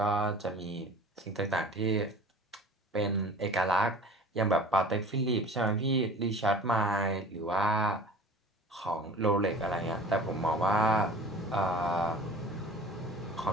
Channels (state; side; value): normal; both; correlation 0.42